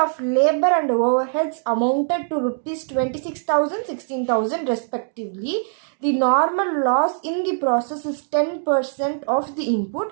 of labor and overheads amounted to rupees 26,000, 16,000 respectively. The normal loss in the process is 10% of the input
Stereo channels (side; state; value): left; silent; digital silence